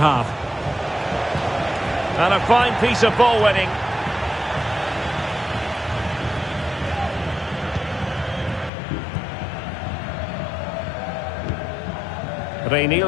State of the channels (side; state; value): right; drops out; at 8.7 s